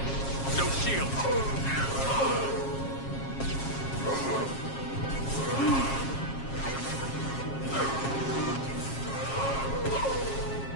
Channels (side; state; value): right; late; 7.4 ms